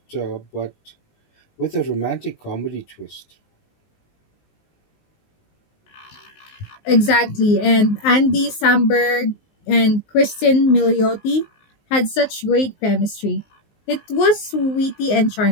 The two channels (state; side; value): late; right; 19 ms